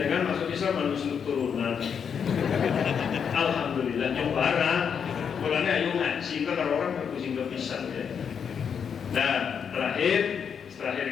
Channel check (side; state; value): right; quieter; 7.1 dB